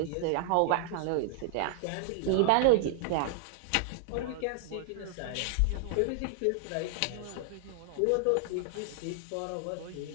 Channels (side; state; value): both; different; correlation 0.00